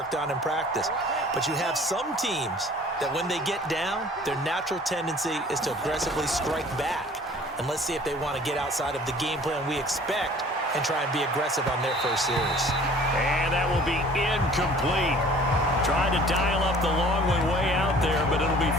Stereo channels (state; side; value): normal; both; correlation 0.50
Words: on in practice. But you have some teams that when they get down, their natural tendency is to aggressively strike back. And let's see if they want to get outside of the game plan we expect and try and be aggressive on their first series. And that will be incomplete. Trying to dial up the long one way out there, but it'll be